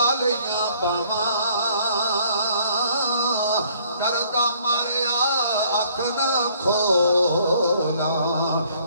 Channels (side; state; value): both; inverted; correlation -0.62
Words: لیاں باواں، ڈردا ماریا اکھ نہ کھولا،